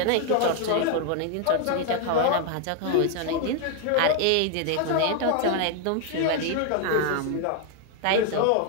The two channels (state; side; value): different; both; correlation 0.00